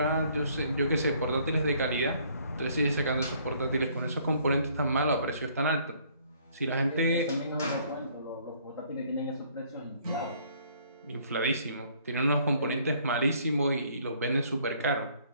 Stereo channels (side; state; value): both; inverted; correlation -0.62